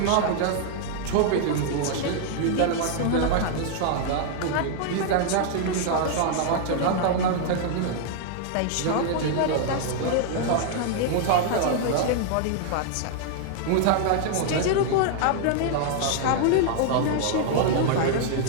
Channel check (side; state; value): both; different; correlation 0.00